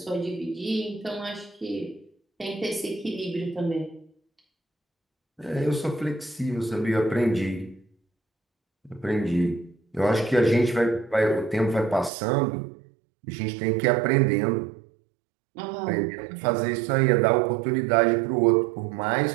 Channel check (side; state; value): left; drops out; at 12.1 s